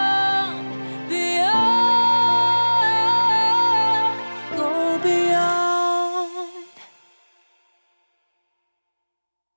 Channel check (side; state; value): both; inverted; correlation -1.00